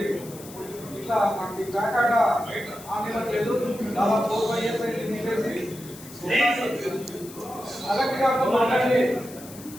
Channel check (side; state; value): left; noise; hiss, 17 dB below the sound